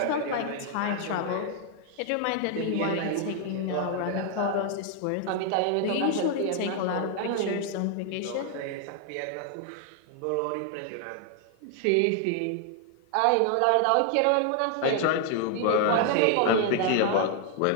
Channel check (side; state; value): both; different; correlation 0.00